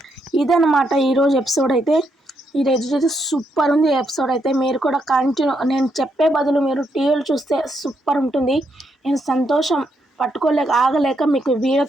ఇదన్నమాట ఈరోజు ఎపిసోడ్ అయితే. ఈరోజు అయితే సూపర్ ఉంది ఎపిసోడ్ అయితే. మీరు కూడా నేను చెప్పే బదులు మీరు టీవీలు చూస్తే సూపర్ ఉంటుంది. నేను సంతోషం ఆగలేక మీకు వీడియో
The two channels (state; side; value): normal; both; correlation 0.78